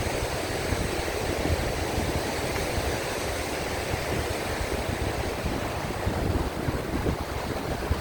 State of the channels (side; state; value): both; identical; correlation 1.00